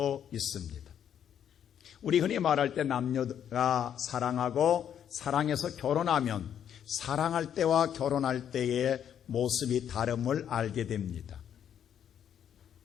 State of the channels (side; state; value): right; quieter; 9.2 dB